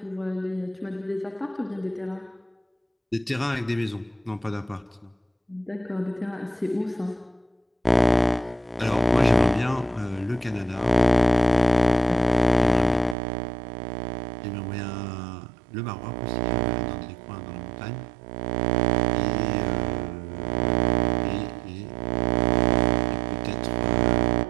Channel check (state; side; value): drops out; left; at 13.2 s